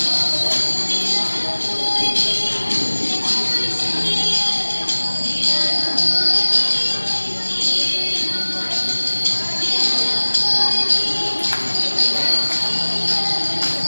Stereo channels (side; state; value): both; inverted; correlation -1.00